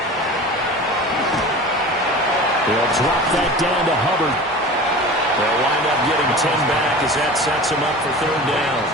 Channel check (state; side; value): normal; both; correlation 0.36